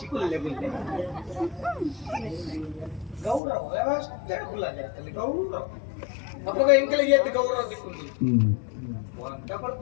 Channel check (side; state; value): right; drops out; at 3.4 s